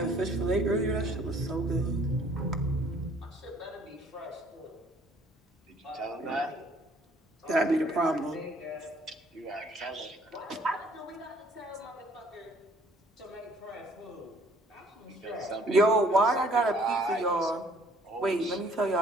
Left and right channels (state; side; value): normal; both; correlation 0.59